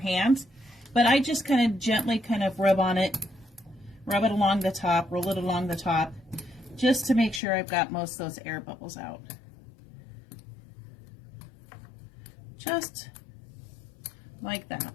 But I just kind of gently kind of rub on it, rub it along the top, roll it along the top, just to make sure I've got most of those air bubbles out. Just like that.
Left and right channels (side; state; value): right; drops out; at 7.4 s